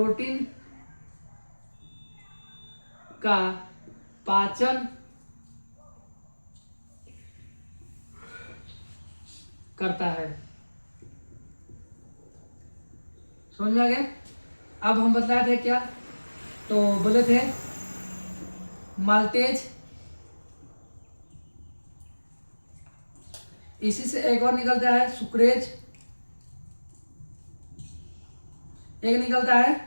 का पाचन करता है, समझ में आ गया? अब हम बतलाए थे क्या, तो बोले थे माल्टेज, इसी से एक और निकलता है सुक्रेज, एक निकलता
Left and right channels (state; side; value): inverted; both; correlation -1.00